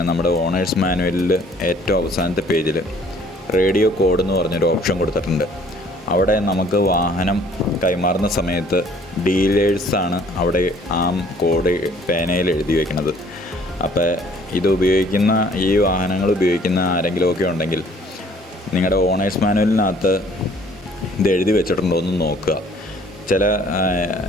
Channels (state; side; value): normal; both; correlation 0.58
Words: നമ്മുടെ ഓണേഴ്സ് മാനുവലിൽ ഏറ്റവും അവസാനത്തെ പേജിൽ റേഡിയോ കോഡ് എന്ന് പറഞ്ഞൊരു ഓപ്ഷൻ കൊടുത്തിട്ടുണ്ട്. അവിടെ നമുക്ക് വാഹനം കൈമാറുന്ന സമയത്ത് ഡീലേഴ്സാണ് അവിടെ ആ കോഡ് പേനയിൽ എഴുതി വയ്ക്കുന്നത്. അപ്പോൾ ഇത് ഉപയോഗിക്കുന്ന ഈ വാഹനങ്ങൾ ഉപയോഗിക്കുന്ന ആരെങ്കിലുമൊക്കെ ഉണ്ടെങ്കിൽ നിങ്ങളുടെ ഓണേഴ്സ് മാനുവലിനകത്ത് ഇത് എഴുതി വെച്ചിട്ടുണ്ടോ എന്ന് നോക്കുക.